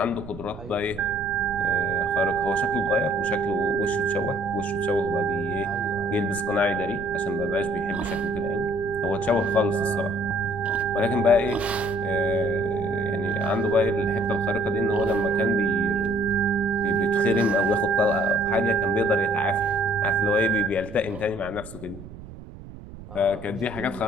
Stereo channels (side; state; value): right; noise; rumble, 15 dB below the sound